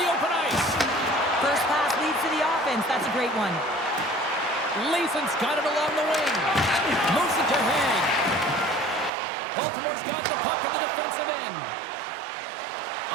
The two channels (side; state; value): left; drops out; at 9.1 s